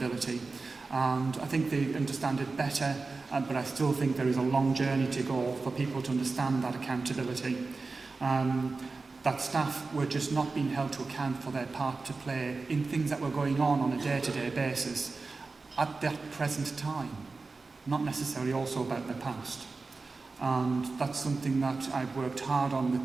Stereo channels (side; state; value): left; quieter; 3.9 dB